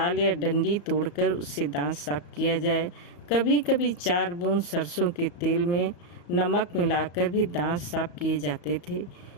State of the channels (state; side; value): late; right; 34 ms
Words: या डंडी तोड़कर उससे दांत साफ किया जाए। कभी कभी 4 बूंद सरसों के तेल में नमक मिलाकर भी दांत साफ किए जाते थे।